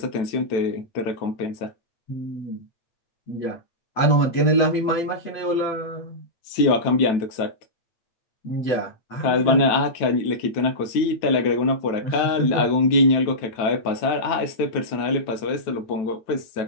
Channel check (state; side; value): late; right; 9.1 ms